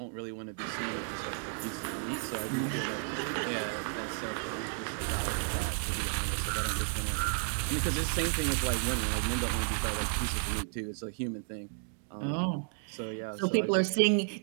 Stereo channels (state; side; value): silent; left; 56 dB below the other